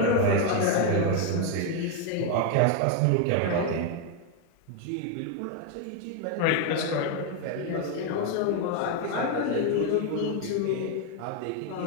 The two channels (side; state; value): both; different; correlation 0.01